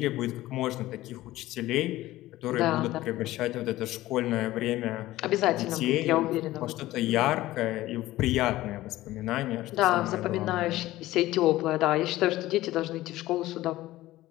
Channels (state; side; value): quieter; right; 16.4 dB